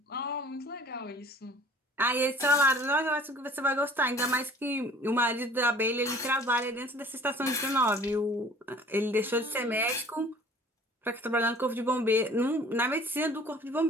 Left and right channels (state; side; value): normal; both; correlation 0.50